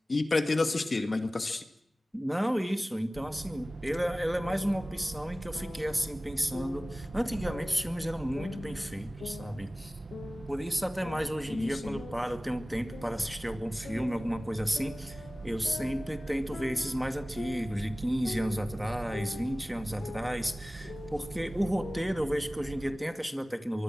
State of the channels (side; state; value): both; normal; correlation 0.97